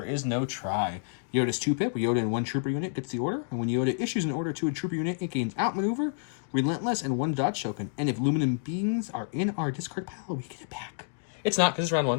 is no try. Yoda's 2-pip, where Yoda in 1 trooper unit gets the order, and when Yoda issues an order to a trooper unit, it gains outmaneuver, relentless, and 1 dodge token. And if luminum beings are in our discard pile, we get it back. It's not, because it's round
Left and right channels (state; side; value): silent; right; digital silence